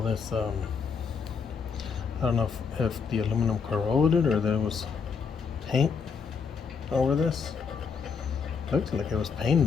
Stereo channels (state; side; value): quieter; right; 5.8 dB